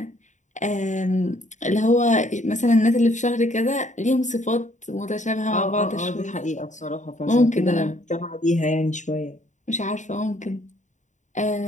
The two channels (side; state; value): right; late; 0.35 ms